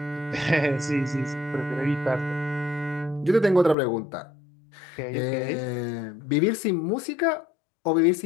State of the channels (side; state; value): right; drops out; at 3.8 s